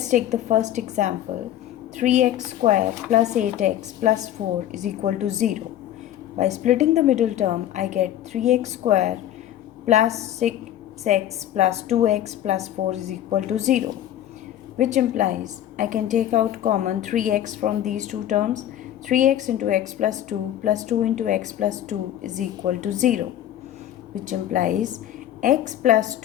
take the first example. 3x square plus 8x plus 4 is equal to 0. By splitting the middle term, I get 3x square plus 6x plus 2x plus 4 is equal to 0, which implies I can take out common 3x from these two terms. 3x into x plus 2 into x plus 2 is equal to 0, which implies x plus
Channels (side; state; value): right; quieter; 11.8 dB